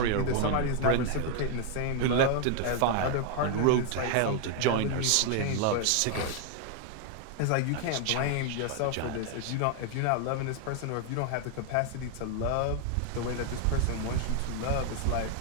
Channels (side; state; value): both; different; correlation 0.00